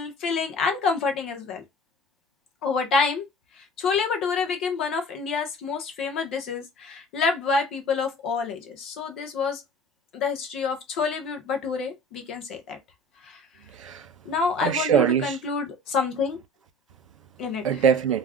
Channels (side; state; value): both; normal; correlation 0.43